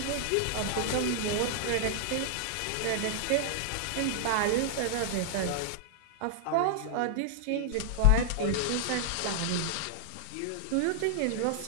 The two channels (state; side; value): different; both; correlation 0.00